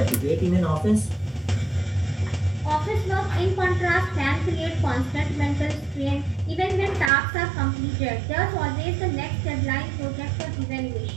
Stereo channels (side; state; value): left; drops out; at 7.1 s